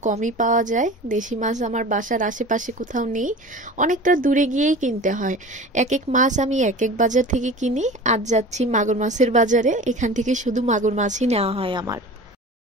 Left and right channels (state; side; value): normal; both; correlation 0.37